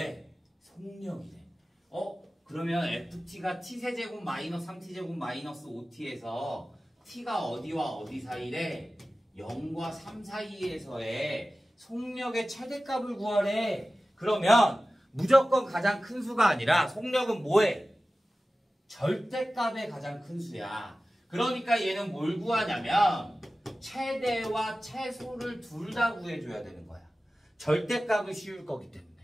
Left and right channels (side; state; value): both; normal; correlation 0.96